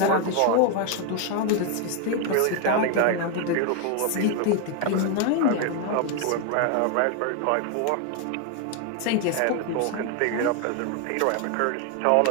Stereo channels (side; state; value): both; different; correlation 0.01